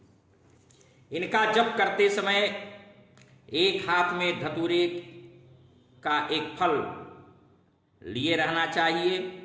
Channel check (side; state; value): both; identical; correlation 1.00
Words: इनका जप करते समय एक हाथ में धतूरे का एक फल लिए रहना चाहिए।